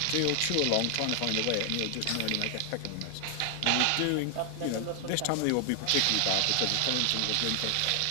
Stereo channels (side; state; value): both; different; correlation 0.00